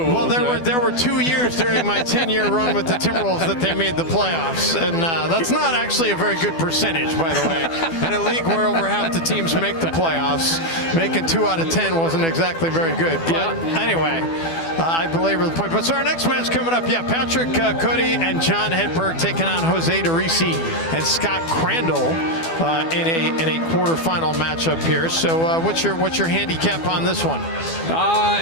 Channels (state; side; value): late; right; 12 ms